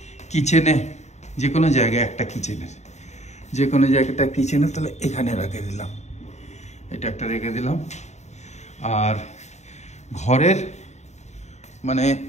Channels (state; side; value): late; right; 0.33 ms